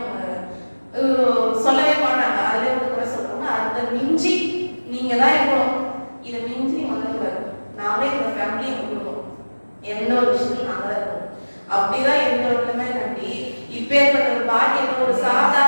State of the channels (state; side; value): inverted; both; correlation -1.00